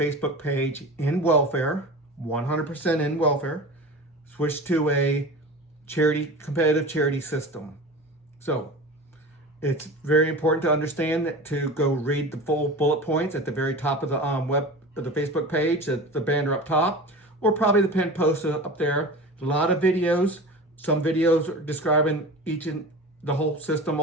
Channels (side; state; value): both; normal; correlation 0.33